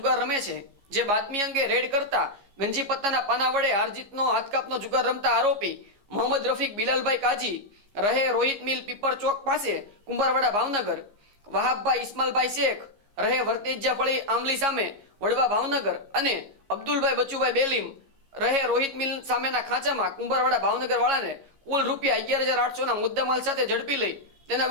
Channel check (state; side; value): late; left; 15 ms